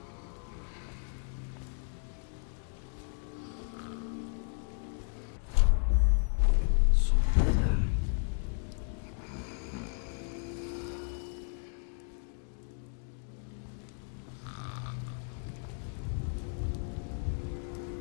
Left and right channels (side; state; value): right; silent; 55 dB below the other